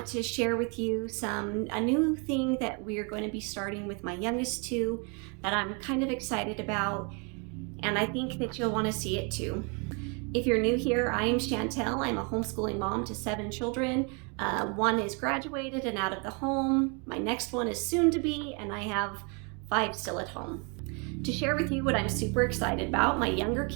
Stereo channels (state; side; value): quieter; left; 34.3 dB